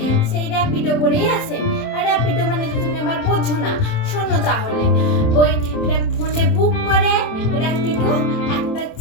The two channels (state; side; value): late; right; 27 ms